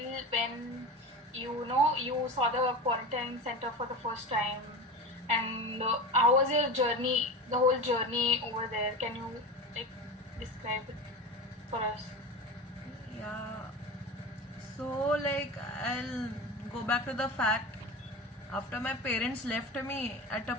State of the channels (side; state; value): both; normal; correlation 0.27